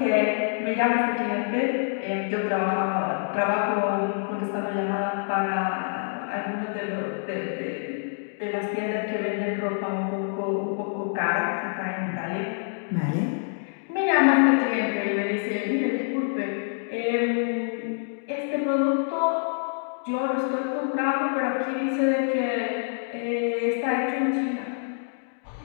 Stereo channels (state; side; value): silent; right; digital silence